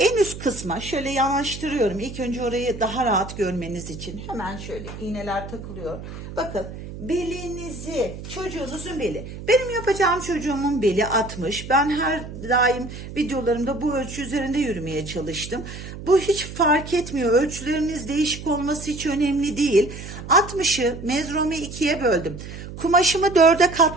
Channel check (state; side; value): noise; right; hum, 11 dB below the sound